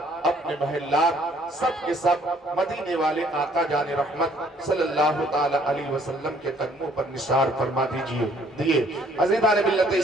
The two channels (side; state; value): both; normal; correlation 0.62